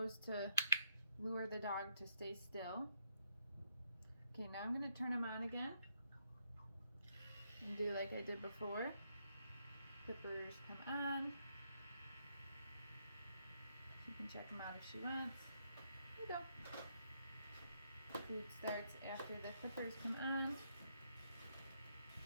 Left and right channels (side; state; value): both; inverted; correlation -0.75